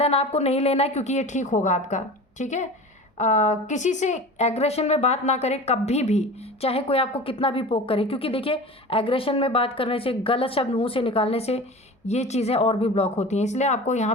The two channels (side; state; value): both; normal; correlation 0.35